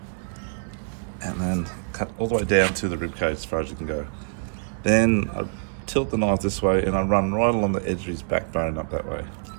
and then cut all the way down to the rib cage as far as you can go. Then I tilt the knife this way and I run right along the edge of his backbone up that way.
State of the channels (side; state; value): left; silent; 61 dB below the other